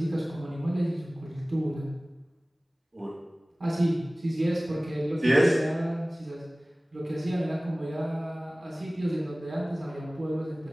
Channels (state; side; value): normal; both; correlation 0.98